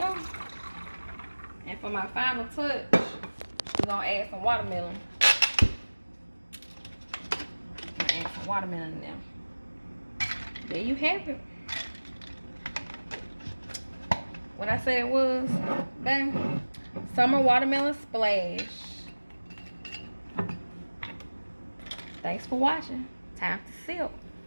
And for my final touch, we're gonna add some watermelon. Add some watermelon in there. There you have it. What I said it was, bang, Summer Watermelon Splash. Thanks for watching. Time to sip.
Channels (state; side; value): inverted; both; correlation -1.00